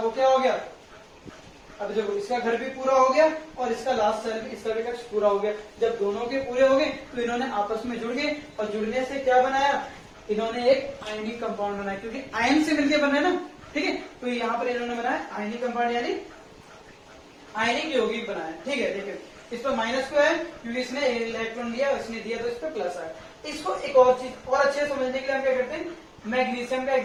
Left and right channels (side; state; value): both; identical; correlation 1.00